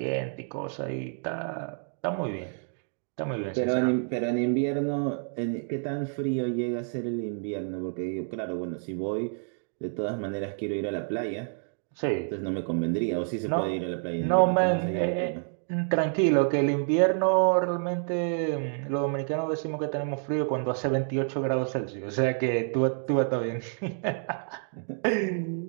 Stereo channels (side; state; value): left; silent; 59 dB below the other